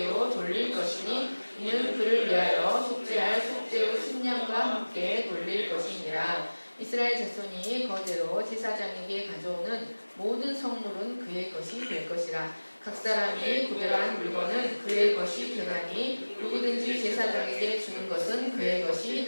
돌릴 것이니 이는 그를 위하여 속죄할 속죄의 순양과 함께 돌릴 것이니라. 이스라엘 자손이 거제로 제사장에게 가져오는 모든 성물은 그의 것이 될 것이라. 각 사람이 구별한 물건은 그의 것이 되나니 누구든지 제사장에게 주는 것은 그의 것이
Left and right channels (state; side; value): inverted; both; correlation -1.00